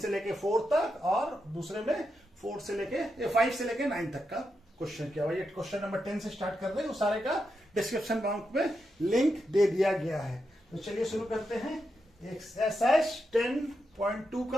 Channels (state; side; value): normal; both; correlation 0.86